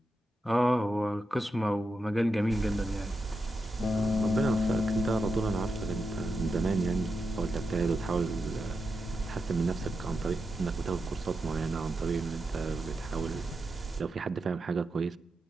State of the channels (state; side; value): normal; both; correlation 0.87